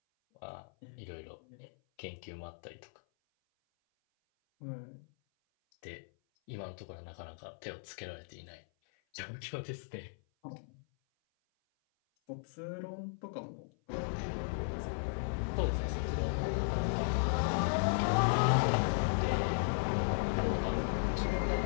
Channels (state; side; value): silent; right; 54 dB below the other